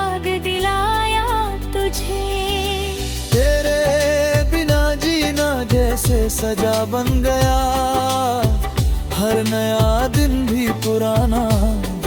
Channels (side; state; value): both; identical; correlation 1.00